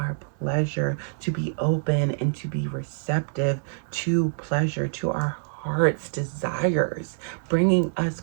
to be open and to be receptive to pleasure, to our heart's desires, bringing us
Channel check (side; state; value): left; silent; digital silence